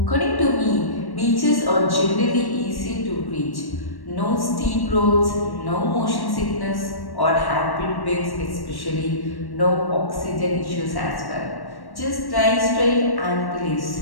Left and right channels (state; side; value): late; right; 1.1 ms